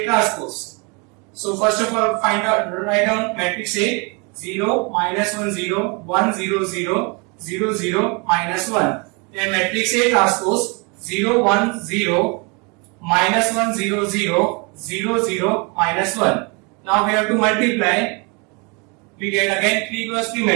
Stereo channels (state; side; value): quieter; left; 31.3 dB